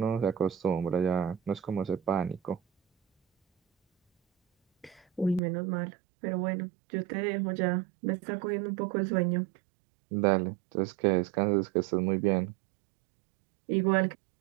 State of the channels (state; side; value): drops out; left; at 5.4 s